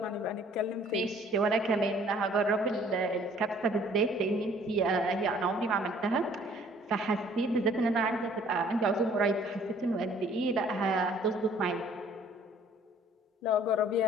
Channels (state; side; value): normal; both; correlation 0.57